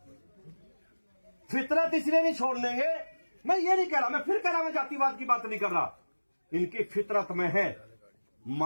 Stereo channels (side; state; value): both; inverted; correlation -1.00